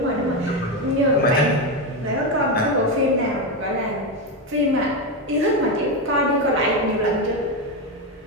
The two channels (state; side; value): normal; both; correlation 0.11